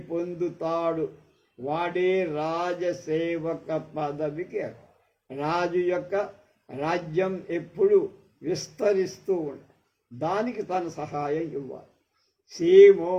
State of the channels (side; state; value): both; identical; correlation 1.00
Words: పొందుతాడు వాడే రాజసేవక పదవికి. రాజు యొక్క రాజ్యం ఎప్పుడు విస్తరిస్తూ ఉంటుంది, దానికి తన సహాయం ఇవ్వాలి. సీమో